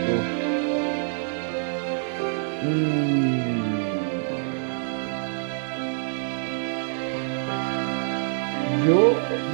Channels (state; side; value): silent; left; digital silence